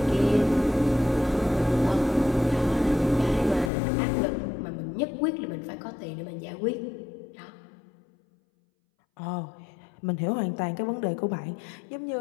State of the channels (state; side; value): drops out; right; at 3.7 s